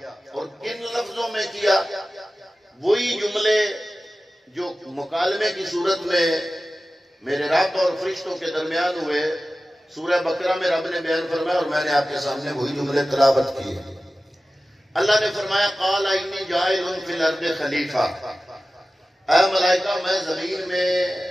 اور کن لفظوں میں کیا؟ وہی جملے جو مکالمے کی صورت میں میرے رب اور فرشتوں کے درمیان ہوئے سورہ بقرہ میں رب نے بیان فرمایا، اور میں نے آپ کے سامنے وہی جملے تلاوت کیے۔ اللہ نے فرمایا قال انی جاعل فی الارض خلیفہ، اے ملائکہ میں زمین میں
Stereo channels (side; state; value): both; normal; correlation 0.95